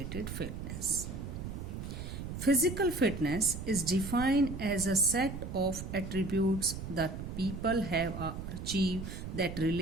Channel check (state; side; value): noise; right; rumble, 7 dB below the sound